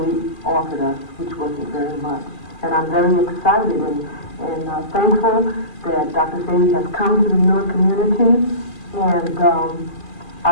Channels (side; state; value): right; late; 2.4 ms